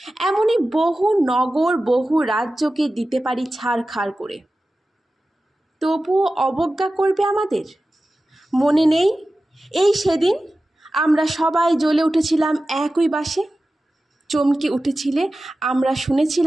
এমনই বহু নগর, বহু রাজ্যকে দিতে পারি ছাড়খাড় করে, তবুও অবজ্ঞা করবে আমাদের। মনে নেই এই সেদিন আমরা সবাই জ্বলে উঠেছিলাম একই বাসে, চমকে উঠেছিলে আমরা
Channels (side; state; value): both; normal; correlation 0.95